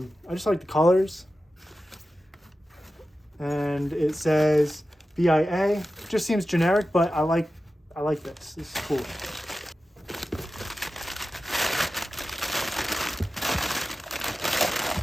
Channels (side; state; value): both; normal; correlation 0.93